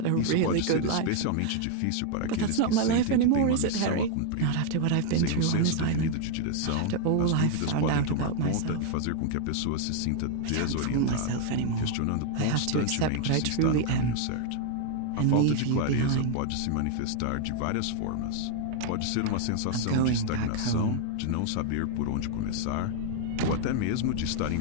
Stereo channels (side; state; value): both; different; correlation 0.00